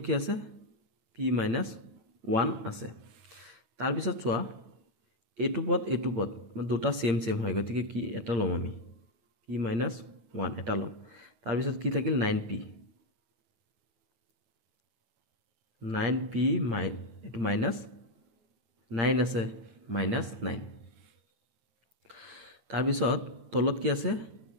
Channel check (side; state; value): left; late; 8.8 ms